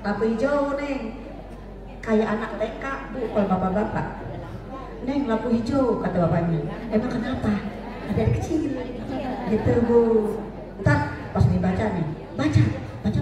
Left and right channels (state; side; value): identical; both; correlation 1.00